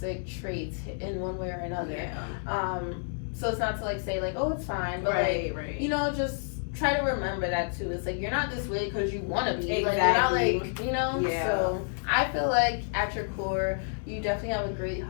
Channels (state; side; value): silent; right; digital silence